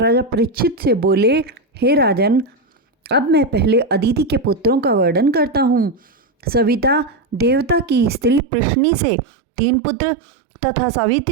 परीक्षित से बोले, हे राजन, अब मैं पहले अदिति के पुत्रों का वर्णन करता हूँ। सविता देवता की स्त्री पृश्नी से 3 पुत्र तथा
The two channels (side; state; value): left; drops out; at 8.4 s